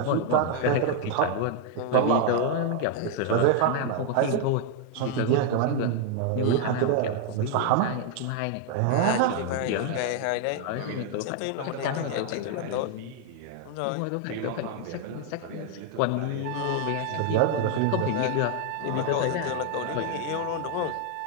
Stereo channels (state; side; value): different; both; correlation 0.00